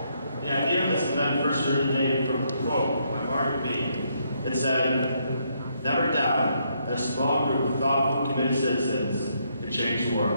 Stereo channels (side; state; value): both; inverted; correlation -0.74